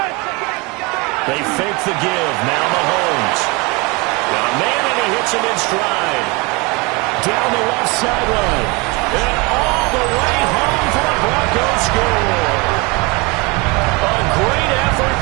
They fake the give. Now Mahomes. Got a man, and he hits him in stride. Down the left sideline. And all the way home for a Broncos score. A great effort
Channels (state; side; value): quieter; left; 27.2 dB